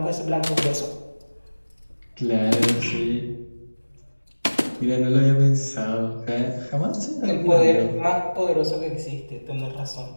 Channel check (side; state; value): both; inverted; correlation -1.00